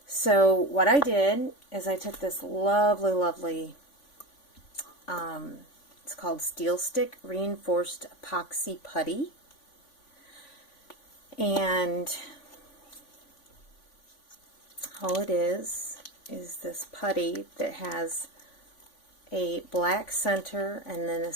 So what I did is I took this lovely it's called Steel Stick Reinforced Epoxy Putty, and all it is this putty that has a black center and then a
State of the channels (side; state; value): right; late; 3.5 ms